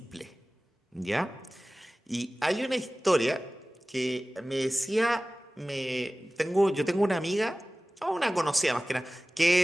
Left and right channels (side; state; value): both; normal; correlation 0.97